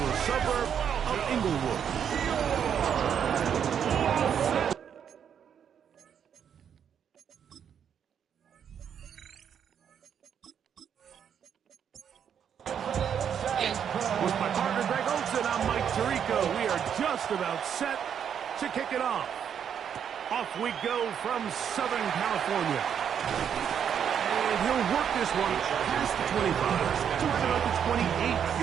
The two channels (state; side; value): quieter; left; 8.3 dB